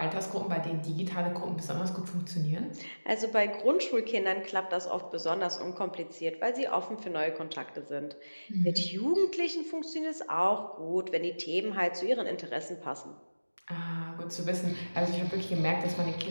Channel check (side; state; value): both; inverted; correlation -1.00